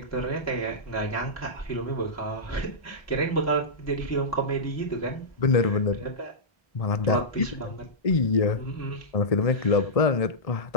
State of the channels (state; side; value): late; right; 1.6 ms